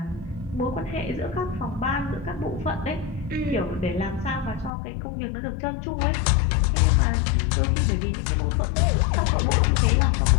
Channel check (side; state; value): right; drops out; at 4.7 s